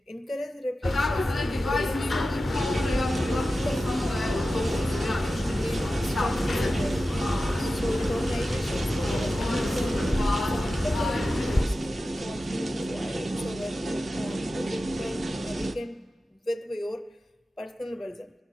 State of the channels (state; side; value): normal; both; correlation 0.93